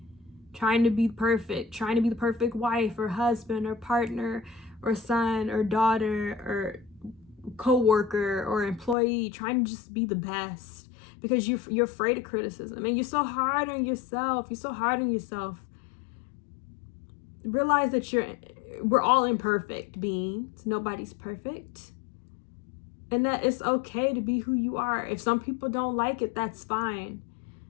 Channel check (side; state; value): right; drops out; at 9.0 s